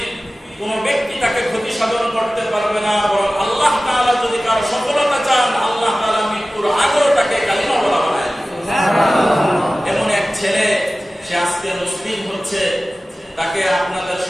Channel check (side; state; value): both; normal; correlation 0.96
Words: কোন ব্যক্তি তাকে ক্ষতি সাধন করতে পারবে না, বরং আল্লাহ তাআলা যদি কারো সফলতা চান আল্লাহ তাআলা মৃত্যুর আগেও তাকে কালিমা বলা বানায়। এমন এক ছেলে, সে আজকে মুসলিম হচ্ছে, তাকে আপনাদের